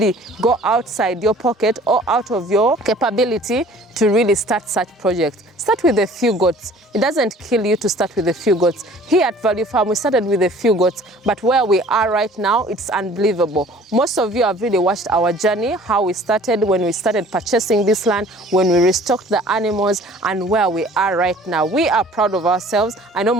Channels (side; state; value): both; normal; correlation 0.50